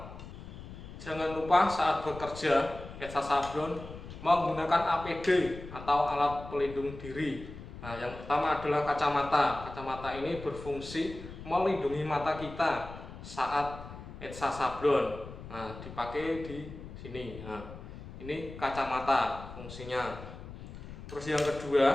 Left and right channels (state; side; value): noise; left; rumble, 13 dB below the sound